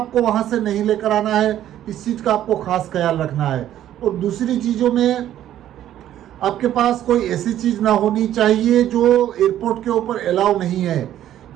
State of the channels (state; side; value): quieter; left; 11.9 dB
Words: वहाँ से नहीं लेकर आना है, इस चीज़ का आपको खास ख्याल रखना है। और दूसरी चीज़ों में आपके पास कोई ऐसी चीज़ ना होनी चाहिए जो एयरपोर्ट के ऊपर अलाउ नहीं है,